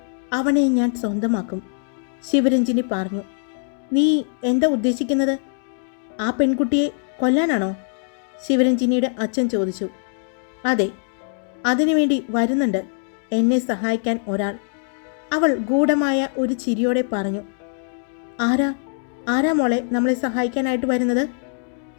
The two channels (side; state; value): right; silent; digital silence